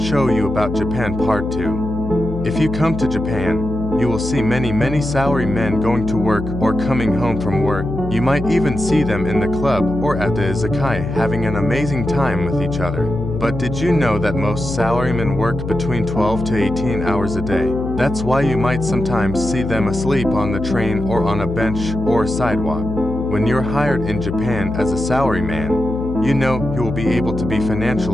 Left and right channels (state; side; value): noise; left; hum, 7 dB below the sound